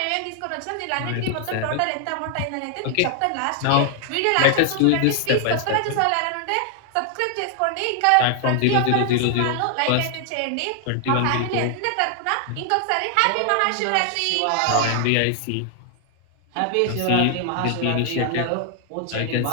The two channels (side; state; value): both; different; correlation 0.00